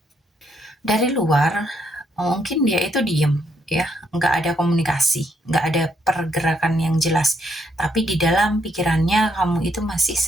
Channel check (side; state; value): both; normal; correlation 0.74